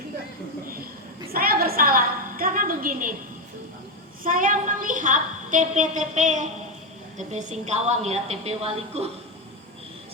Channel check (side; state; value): both; normal; correlation 0.08